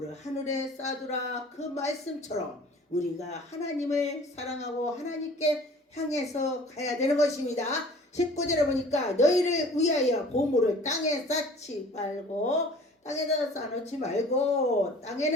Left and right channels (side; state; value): both; normal; correlation 0.48